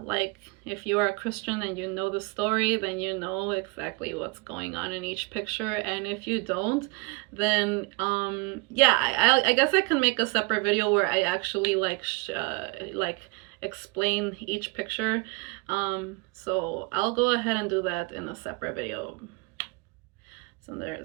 like if you are a Christian and you know the story, then you know exactly what's going on in each picture. And if you don't, then yeah, I guess I can make a separate video where I actually like explain each picture. So I'll go ahead and do that in a separate video. So there's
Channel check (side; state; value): left; quieter; 27.0 dB